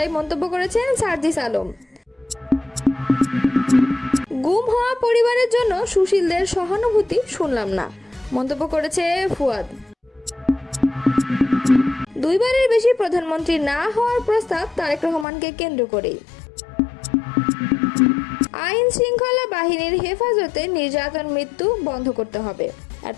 মন্তব্য করেছেন সার্জিস আলম। গুম হওয়া পরিবারের জন্য সুশীলদের সহানুভূতি শুনলাম না, মন্তব্য করেছে ফুয়াদ। দুইবারের বেশি প্রধানমন্ত্রী না হওয়ার প্রস্তাব তারেক রহমানকে কেন্দ্র করেই। আইন শৃঙ্খলা বাহিনীর হেফাজতে নির্যাতন মৃত্যু বন্ধ করতে হবে।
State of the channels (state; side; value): drops out; right; at 15.2 s